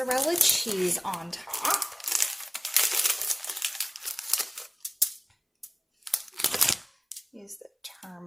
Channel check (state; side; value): identical; both; correlation 1.00